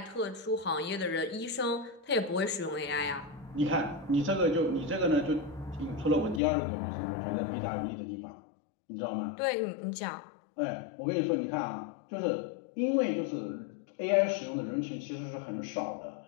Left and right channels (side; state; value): right; drops out; at 6.4 s